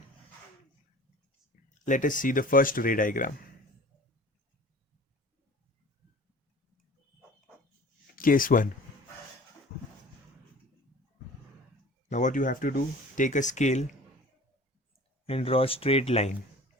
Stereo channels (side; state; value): both; normal; correlation 0.44